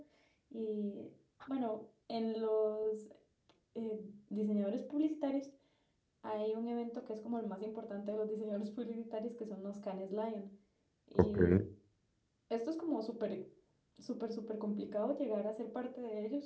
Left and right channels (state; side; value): identical; both; correlation 1.00